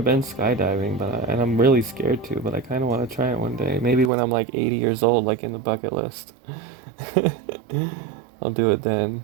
been skydiving, and I'm really scared to, but I kind of want to try it one day. Maybe when I'm like 80 years old, like in the bucket list. I'll do it then.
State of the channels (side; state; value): left; drops out; at 4.1 s